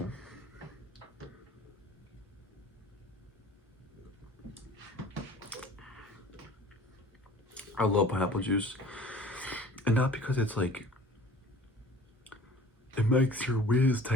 I love pineapple juice. And not because it's like, it makes your whiz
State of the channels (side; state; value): both; normal; correlation 0.47